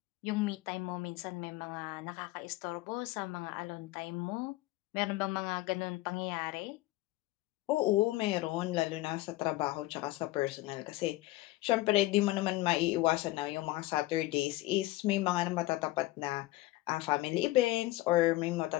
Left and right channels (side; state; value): right; quieter; 17.9 dB